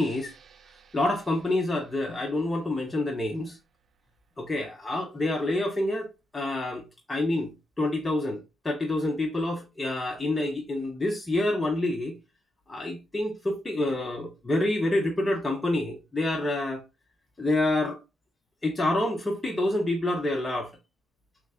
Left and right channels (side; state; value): both; normal; correlation 0.85